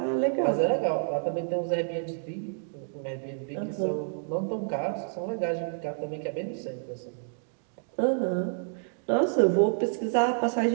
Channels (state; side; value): silent; left; digital silence